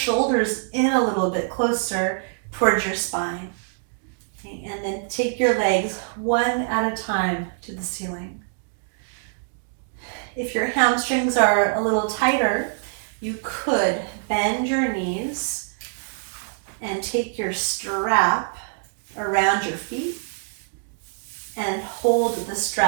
in a little bit closer towards your spine. Okay, and then take your legs one at a time to the ceiling. If your hamstrings are a little tighter, you could bend your knees and take your strap around your feet and hold the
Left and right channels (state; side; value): silent; left; digital silence